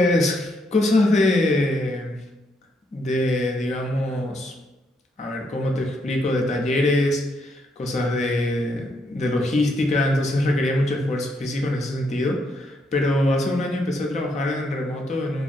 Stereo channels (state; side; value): normal; both; correlation 0.76